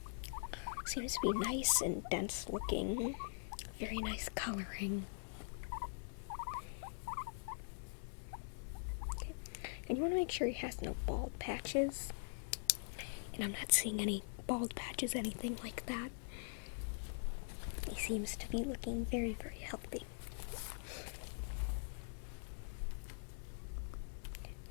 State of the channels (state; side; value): silent; right; digital silence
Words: seems to be nice and dense looking. Very nice coloring. Okay. And you want to make sure he has no bald patches. And I'm not seeing any bald patches, anything like that. He seems to be looking very, very healthy.